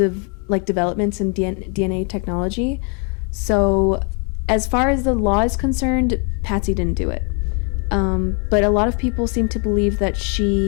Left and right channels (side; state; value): right; quieter; 38.4 dB